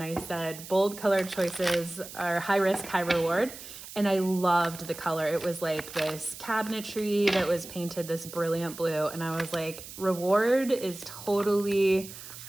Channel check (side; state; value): right; noise; hiss, 14 dB below the sound